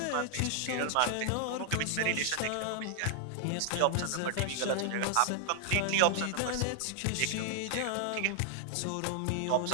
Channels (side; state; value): both; different; correlation 0.00